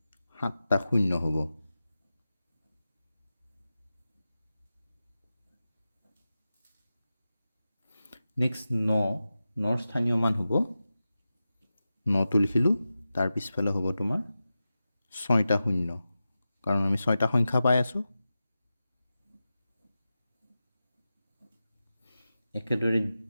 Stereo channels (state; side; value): inverted; both; correlation -0.93